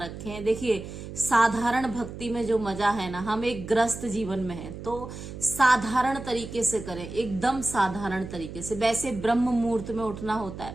हैं। देखिए, साधारण भक्ति में जो मजा है ना, हम एक ग्रस्त जीवन में हैं, तो साधारण तरीके से करें, एकदम साधारण तरीके से। वैसे ब्रह्म मुहूर्त में उठना होता है,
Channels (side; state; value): right; noise; hum, 11 dB below the sound